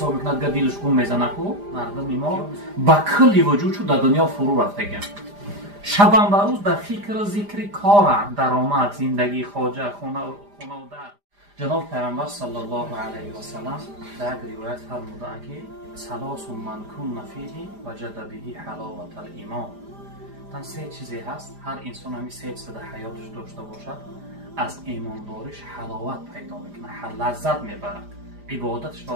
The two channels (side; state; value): left; late; 5.0 ms